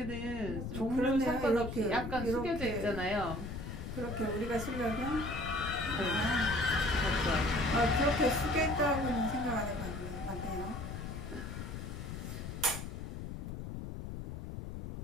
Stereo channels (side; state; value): left; noise; rumble, 7 dB below the sound